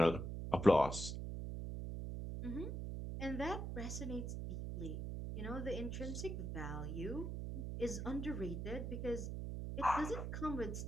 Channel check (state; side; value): noise; right; hum, 4 dB below the sound